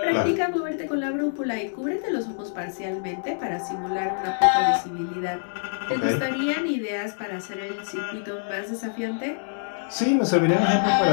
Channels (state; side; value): silent; right; digital silence